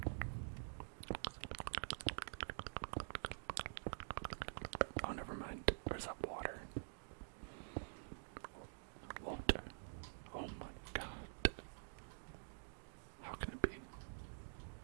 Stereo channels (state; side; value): silent; left; digital silence